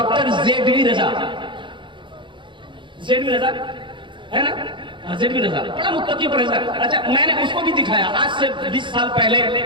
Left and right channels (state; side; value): late; left; 0.23 ms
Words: जेडवी रजा, जेडवी रजा है ना, जेडवी रजा, बड़ा मुत्तकी परहेजगार। अच्छा, मैंने उसको भी दिखाया, आज से 20 साल पहले